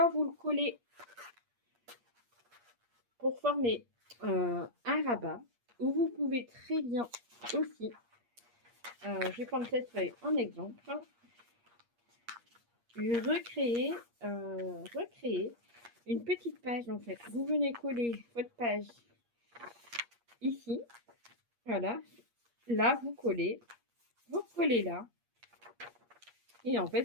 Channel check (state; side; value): late; left; 8.5 ms